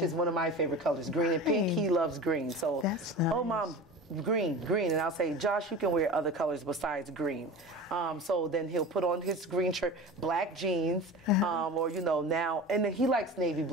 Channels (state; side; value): normal; both; correlation 0.33